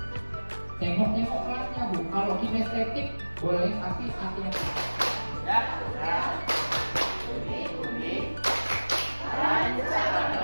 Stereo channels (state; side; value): inverted; both; correlation -1.00